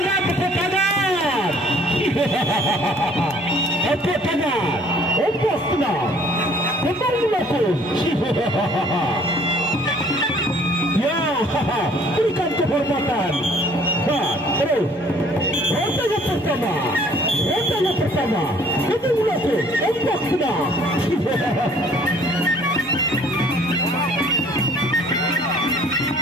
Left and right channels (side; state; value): both; normal; correlation 0.57